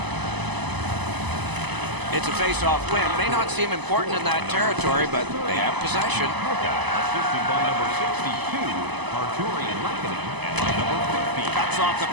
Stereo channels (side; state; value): left; late; 1.0 ms